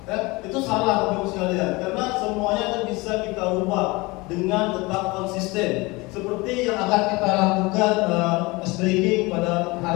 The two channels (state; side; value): quieter; right; 23.9 dB